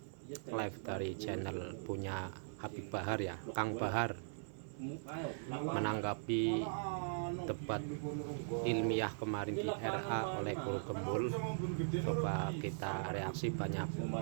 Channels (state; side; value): silent; left; 51 dB below the other